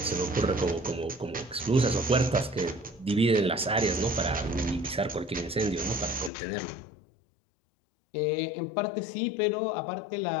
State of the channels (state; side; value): drops out; right; at 6.3 s